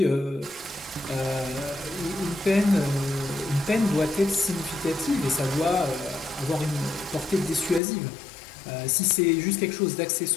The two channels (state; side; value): drops out; right; at 7.8 s